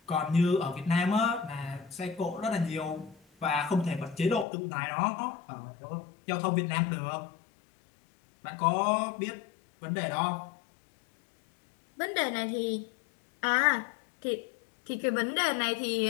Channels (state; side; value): drops out; right; at 4.5 s